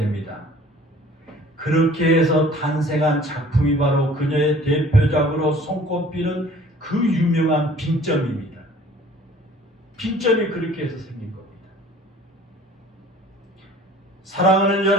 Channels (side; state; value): both; normal; correlation 0.51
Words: 그렇게 해서 탄생한 작품이 바로 그녀의 대표작으로 손꼽히는 그 유명한 빙점입니다. 빙점이 그렇게 해서 생긴 겁니다. 사랑하는